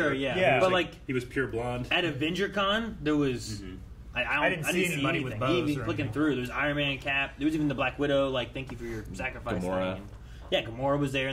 yeah. Yeah. But like he was pure blonde. at AvengerCon, there was... I didn't see anybody with bows Even or clicking anything. through, there was Iron Man, Cap. There was even the Black Widow. Like, thank you for your sacrifice. Gamora. thing. Yeah, Gamora was there,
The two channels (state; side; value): identical; both; correlation 1.00